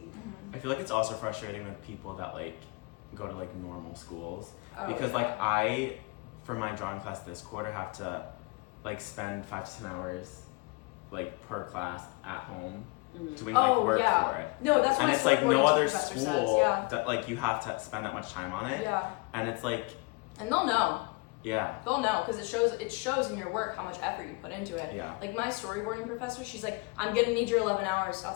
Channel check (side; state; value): right; quieter; 27.8 dB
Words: Mhm. I feel like it's also frustrating with people that like go to like normal schools Oh, because yeah. like I for my drawing class this quarter have to like spend 5 to 10 hours like per class at home doing like work yeah. for it. No, that's what And my it's like no storyboarding other professor school says. Yeah. that like you have to spend that much time on it. Yeah. And it's like, And they'll know. yeah. They'll know because it shows in your work how much effort you put into it. Yeah. Like my storyboarding professor, she's like, I'm gonna need your 11 hours